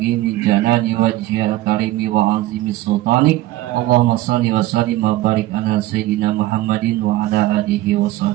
li jalali wajhil karimi wa azimi sultanik. Allahumma shalli wa sallim wa barik ala sayyidina Muhammadin wa ala alihi wa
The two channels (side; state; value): left; quieter; 16.0 dB